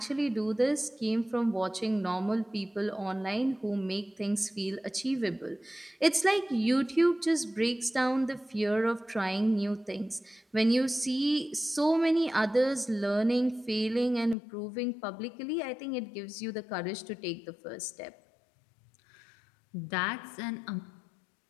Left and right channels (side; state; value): right; drops out; at 14.4 s